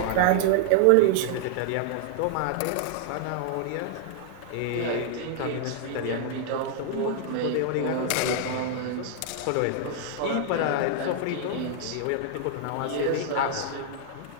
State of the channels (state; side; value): different; both; correlation 0.00